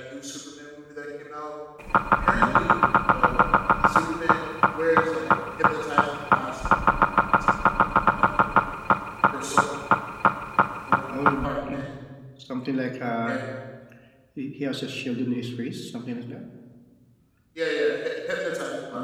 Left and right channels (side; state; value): both; identical; correlation 1.00